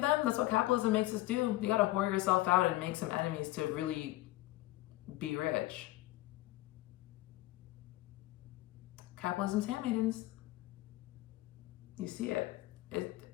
That's what capitalism makes us do. You gotta whore yourself out and make some enemies to really be rich. Capitalism's handmaidens. You see it.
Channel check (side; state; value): right; quieter; 18.2 dB